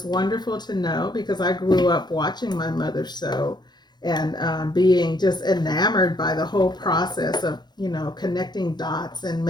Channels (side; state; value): right; late; 0.21 ms